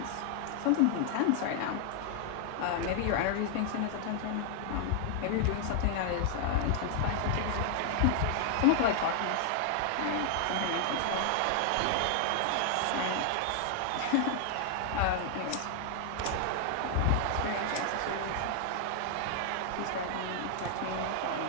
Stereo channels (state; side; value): different; both; correlation 0.00